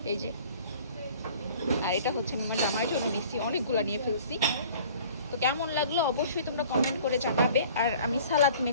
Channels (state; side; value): inverted; both; correlation -0.49